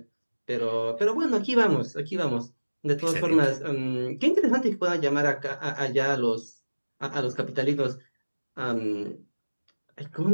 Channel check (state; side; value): inverted; both; correlation -1.00